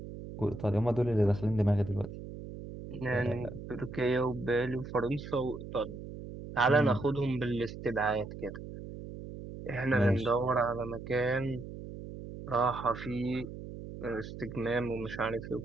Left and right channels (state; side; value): noise; right; hum, 11 dB below the sound